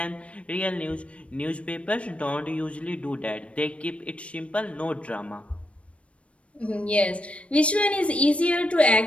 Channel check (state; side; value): late; right; 0.062 ms